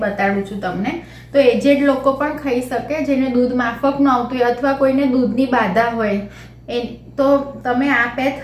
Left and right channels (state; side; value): identical; both; correlation 1.00